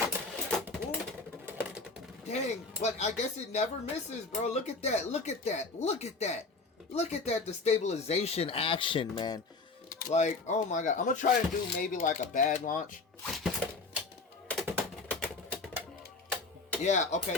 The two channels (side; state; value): right; quieter; 3.8 dB